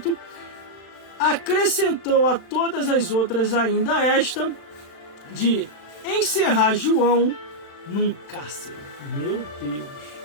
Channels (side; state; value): right; late; 36 ms